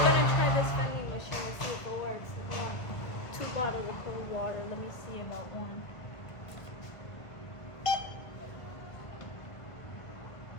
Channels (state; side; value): late; right; 1.5 ms